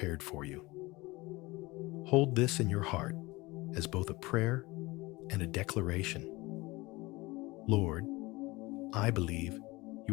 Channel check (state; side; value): quieter; right; 22.0 dB